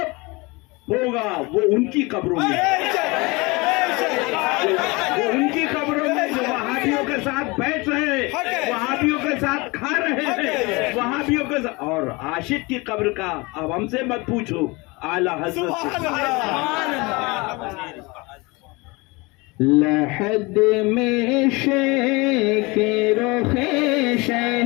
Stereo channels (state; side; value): quieter; right; 25.3 dB